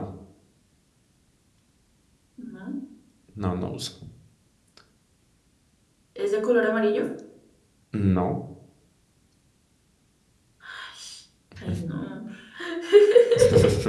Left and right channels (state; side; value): identical; both; correlation 1.00